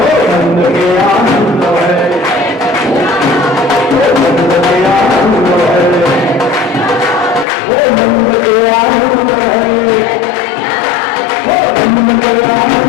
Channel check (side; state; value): right; drops out; at 7.5 s